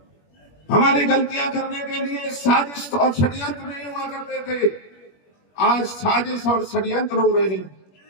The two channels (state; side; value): late; right; 21 ms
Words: हमारी गलतियां करने के लिए साजिश और षड्यंत्र नहीं हुआ करते थे। आज साजिश और षड्यंत्र हो रहे हैं।